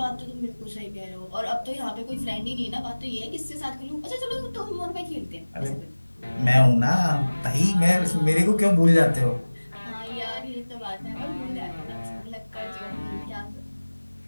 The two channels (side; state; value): both; inverted; correlation -1.00